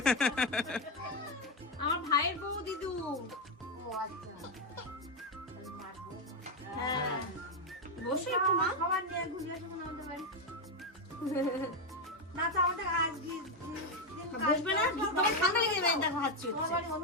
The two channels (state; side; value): normal; both; correlation 0.07